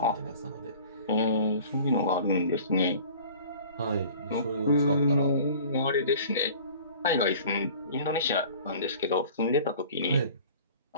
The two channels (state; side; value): inverted; both; correlation -0.46